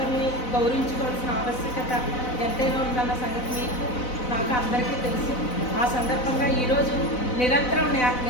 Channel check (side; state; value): right; late; 4.0 ms